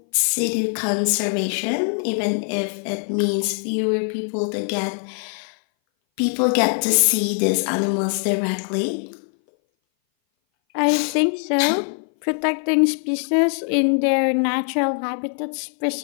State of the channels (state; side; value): silent; right; 59 dB below the other